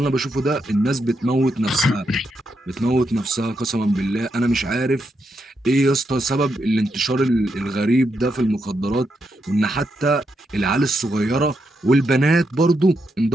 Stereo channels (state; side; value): normal; both; correlation 0.82